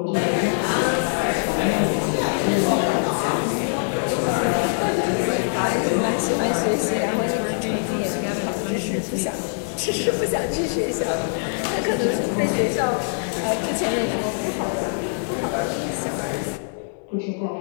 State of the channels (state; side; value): silent; right; 58 dB below the other